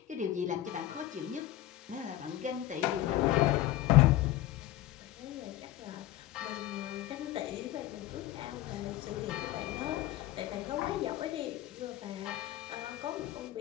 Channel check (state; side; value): quieter; right; 14.1 dB